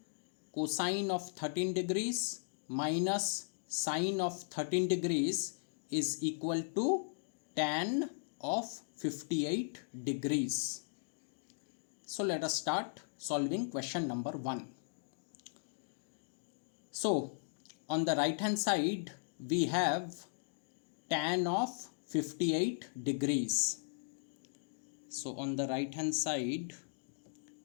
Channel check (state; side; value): silent; right; digital silence